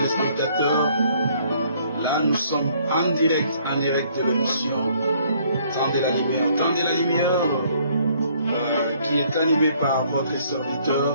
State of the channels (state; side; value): inverted; both; correlation -0.62